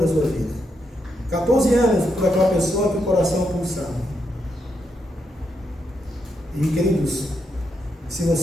sua vida. 14 anos por aquela pessoa que o coração pulsava. E queridos, se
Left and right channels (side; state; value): both; normal; correlation 0.81